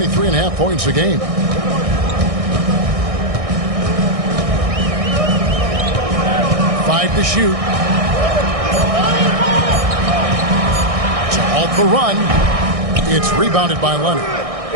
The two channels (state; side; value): late; left; 1.6 ms